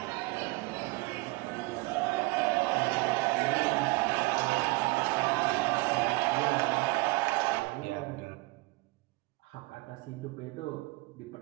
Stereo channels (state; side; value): quieter; left; 23.4 dB